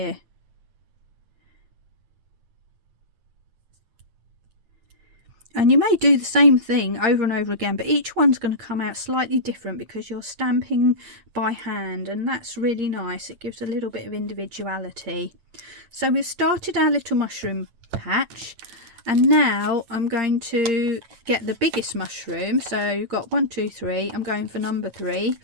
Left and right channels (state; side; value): late; left; 9.1 ms